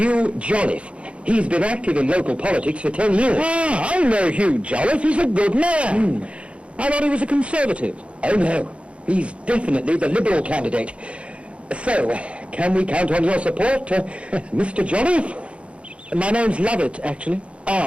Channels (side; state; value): left; late; 0.060 ms